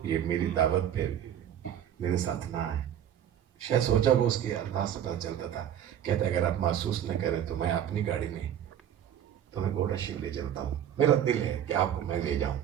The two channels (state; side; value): quieter; left; 10.1 dB